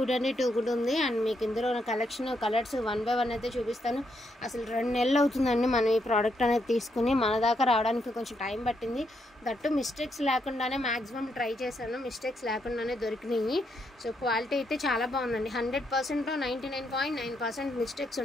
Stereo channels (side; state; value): both; normal; correlation 0.78